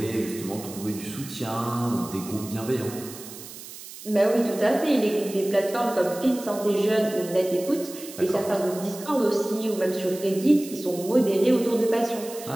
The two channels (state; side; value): noise; right; hiss, 14 dB below the sound